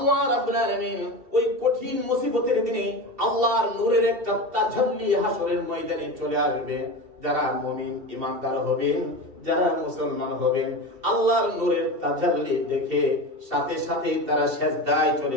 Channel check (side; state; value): left; late; 2.7 ms